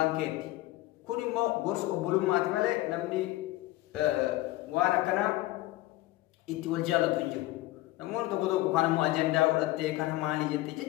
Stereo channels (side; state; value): right; quieter; 17.7 dB